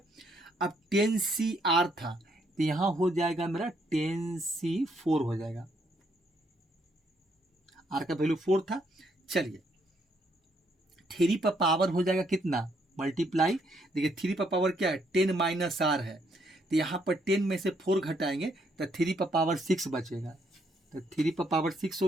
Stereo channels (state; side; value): normal; both; correlation 0.72